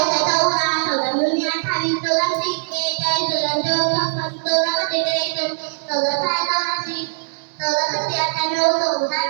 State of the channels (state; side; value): silent; left; 65 dB below the other